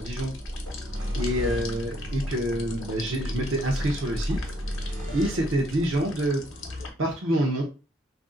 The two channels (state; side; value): normal; both; correlation 0.68